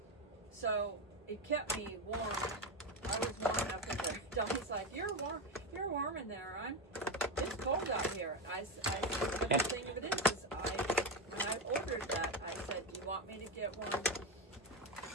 So it kept me warm. I was warm enough. And Donnie's like, "You're warm. You're warm in there. It's cold out here." I said, "The thing of it is when I ordered that, I said, do you want me to get one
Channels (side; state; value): both; normal; correlation 0.13